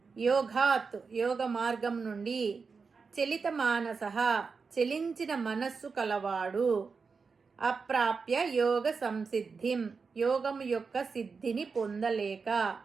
యోగాత్ యోగ మార్గం నుండి, చలిత మానసః చలించిన మనస్సు కలవాడు, అప్రాప్య యోగ సంసిద్ధిం యోగం యొక్క సిద్ధిని పొందలేక,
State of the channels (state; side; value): quieter; left; 5.0 dB